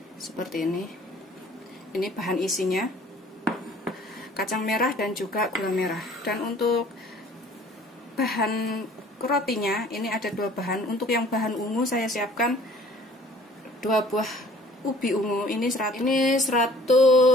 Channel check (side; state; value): both; normal; correlation 0.53